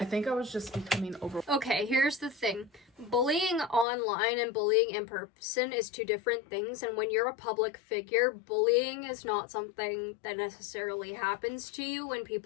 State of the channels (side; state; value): right; drops out; at 3.9 s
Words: think I was just becoming over. Okay, here's the thing. Bullying online and bullying in person is two different things, and when you're a public figure, bullying is not something that necessarily happens to you when